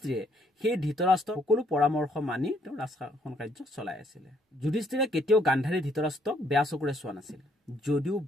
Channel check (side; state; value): both; normal; correlation 0.68